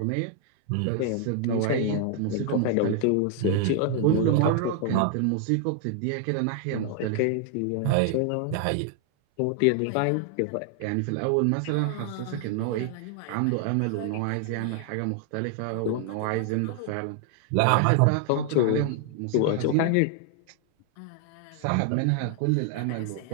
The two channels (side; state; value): both; different; correlation 0.00